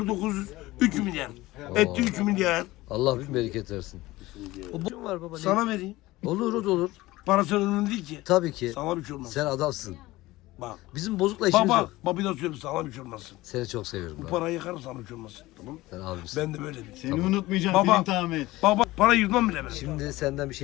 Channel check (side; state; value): right; quieter; 18.6 dB